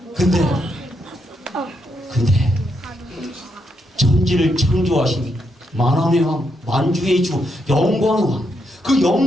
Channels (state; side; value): normal; both; correlation 0.80